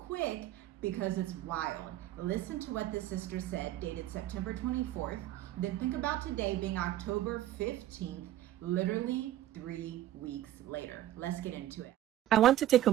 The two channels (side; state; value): left; quieter; 13.4 dB